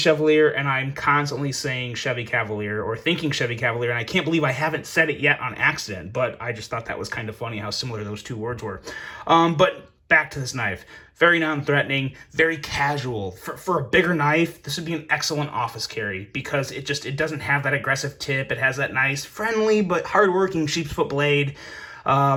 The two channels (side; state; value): both; identical; correlation 1.00